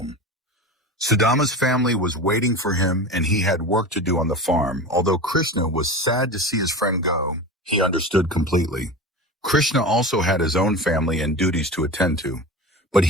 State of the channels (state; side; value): normal; both; correlation 0.29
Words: Sudama's family was waiting for him, and he had work to do on the farm. Although Krishna was sad to see his friend go, he understood completely. Krishna also had his own family and duties to attend to, but